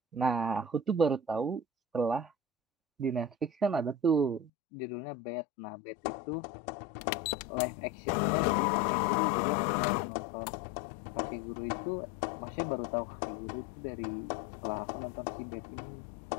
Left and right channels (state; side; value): drops out; right; at 4.5 s